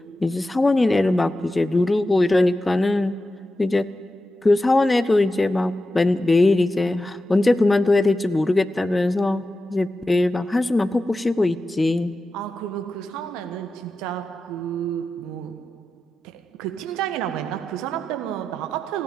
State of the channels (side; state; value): both; normal; correlation 0.91